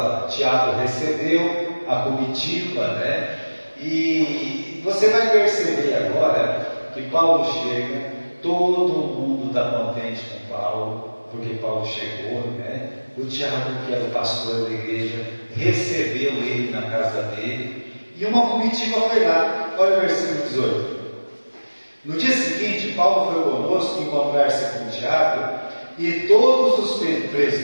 Tiago recebeu a comitiva, né? E você vai perceber agora que Paulo chega, todo mundo está contente com Paulo, porque Paulo chegou, né? O Tiago, que era o pastor da igreja, recebeu ele na casa dele, e uma comitiva foi lá. Olha o versículo 18. No dia seguinte, Paulo foi conosco encontrar-se com Tiago, e todos os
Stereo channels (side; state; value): both; inverted; correlation -1.00